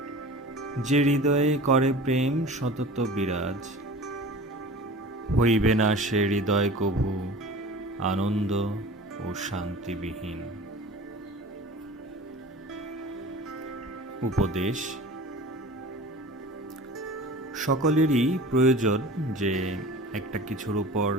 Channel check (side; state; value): both; normal; correlation 0.39